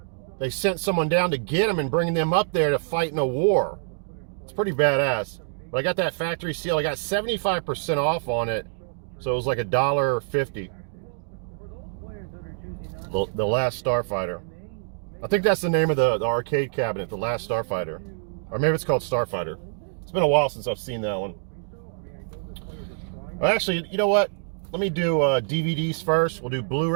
sent someone down to get him and bring them up there to fight in a war. It's pretty badass. But I got that factory seal. I got 75% off on it, so it was like $1.50. The Last Starfighter. I think that's the name of the arcade cabinet, The Last Starfighter. Or maybe it's called Starfighter. It's been a while since I've seen that one. Actually, you know what? Let me do DVDs first. We'll do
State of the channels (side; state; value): left; silent; 61 dB below the other